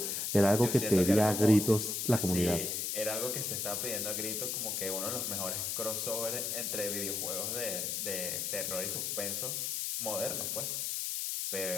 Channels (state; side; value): noise; left; hiss, 1 dB below the sound